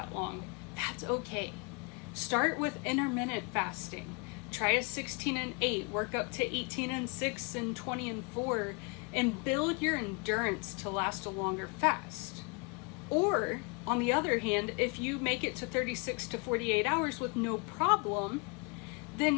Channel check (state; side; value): quieter; right; 32.8 dB